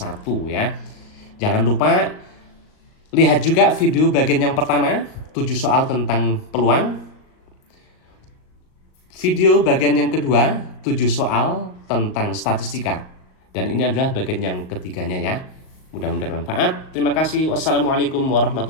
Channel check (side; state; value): right; late; 38 ms